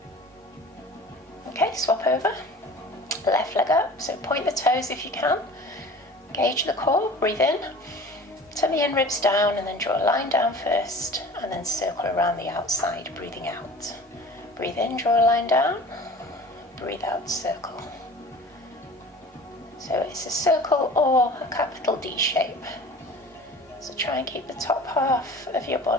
Okay, swap over, left leg up, so point the toes if you can, engage the core, breathe in, tummy and ribs down, and then draw a line down first, and then circle around the outside, breathing out. Breathe in, draw a line down, breathe out, circle. So it's a circle or a capital D shape. So try and keep the top half of your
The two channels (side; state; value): both; normal; correlation 0.42